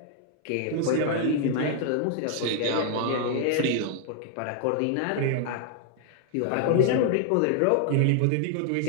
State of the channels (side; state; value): both; different; correlation 0.00